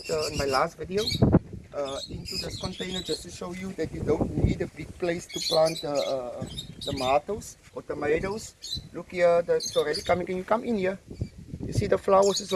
in my last video into this container, just to show you that you don't need a big place to plant tomatoes or tomatoes. Look here, it's already coming. Can you come in here? You see the flowers is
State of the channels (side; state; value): both; identical; correlation 1.00